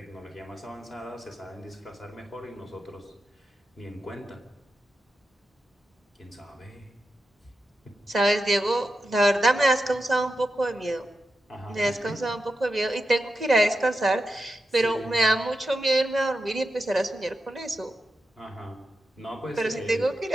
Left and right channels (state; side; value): normal; both; correlation 0.89